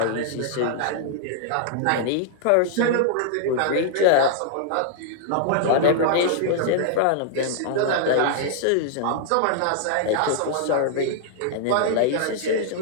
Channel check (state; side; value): different; both; correlation -0.01